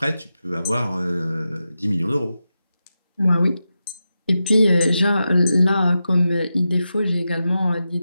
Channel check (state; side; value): inverted; both; correlation -0.90